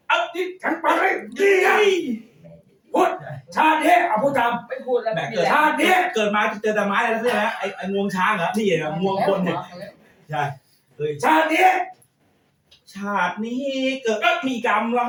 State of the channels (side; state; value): both; identical; correlation 1.00